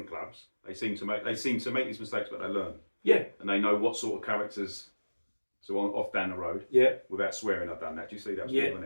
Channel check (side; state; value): both; inverted; correlation -1.00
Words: clubs, they seem to make these mistakes, but they learn. Yeah. And they know what sort of characters to off down the road. Yeah. Without swearing, I've done that. Do you see that? Yeah.